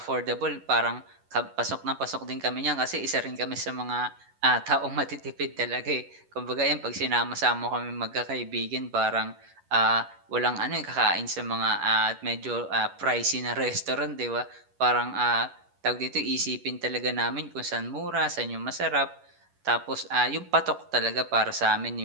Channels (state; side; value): late; left; 11 ms